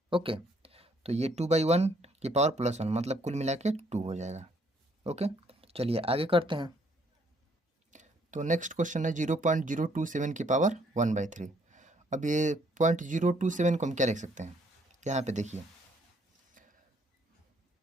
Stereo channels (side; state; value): both; normal; correlation 0.66